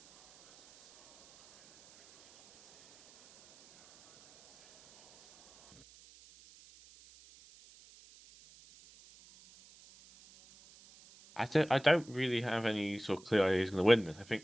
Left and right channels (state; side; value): noise; right; hiss, 25 dB below the sound